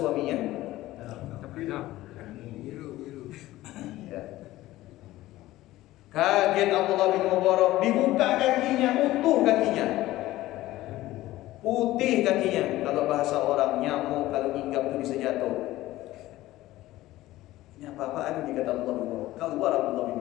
biru. Ya. Kaget Abdullah bin Mubarak, dibuka kakinya, utuh kakinya. Putih kakinya. Kalau bahasa orang, nyamuk kalau hinggap itu bisa jatuh. Ini apa-apaan ini, kata Allah bin Mubarak. Keluar Abdullah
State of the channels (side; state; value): right; quieter; 16.4 dB